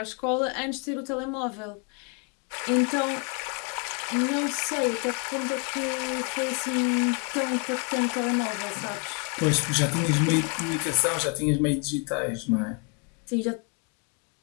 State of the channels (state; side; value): quieter; right; 35.1 dB